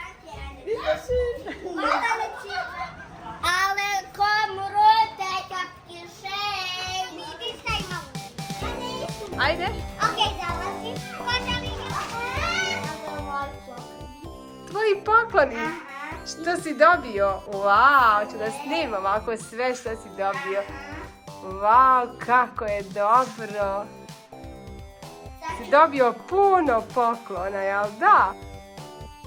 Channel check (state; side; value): identical; both; correlation 1.00